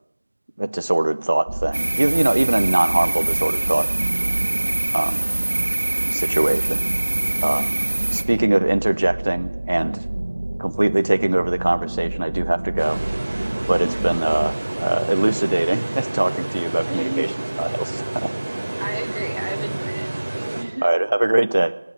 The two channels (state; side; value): inverted; both; correlation -1.00